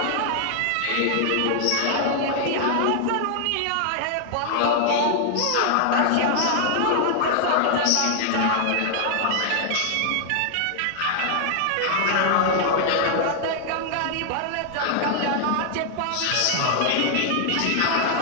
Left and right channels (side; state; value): both; different; correlation 0.00